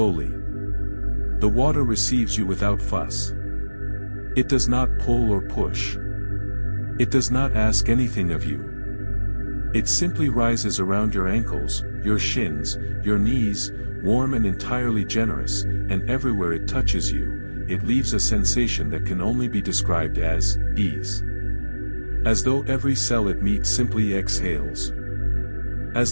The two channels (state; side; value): inverted; both; correlation -1.00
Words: The water receives you without fuss. It does not pull or push. It does not ask anything of you. It simply rises around your ankles, your shins, your knees, warm and entirely generous, and everywhere it touches you, it leaves a sensation that can only be described as ease. As though every cell it meets simply exhales.